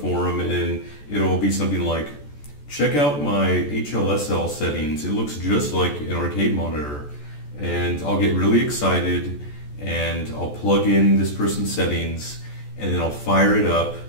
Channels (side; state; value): right; late; 14 ms